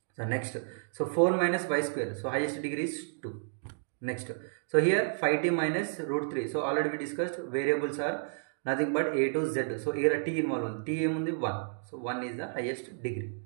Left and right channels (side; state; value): left; silent; digital silence